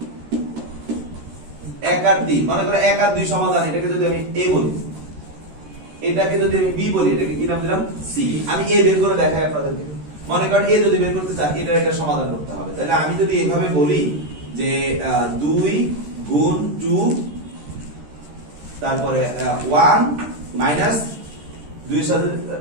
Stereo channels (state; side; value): late; left; 13 ms